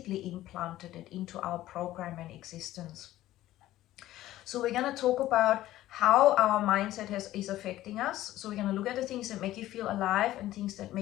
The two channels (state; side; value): quieter; right; 14.8 dB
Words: implanted it into our program and existence. So we're going to talk about how our mindset is affecting us. So we're going to look at the things that make you feel alive and things that